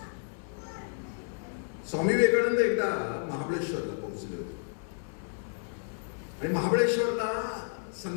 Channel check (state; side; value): silent; right; 57 dB below the other